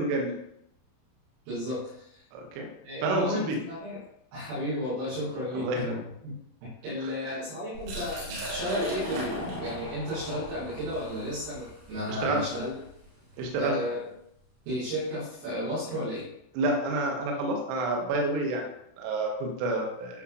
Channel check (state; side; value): late; left; 31 ms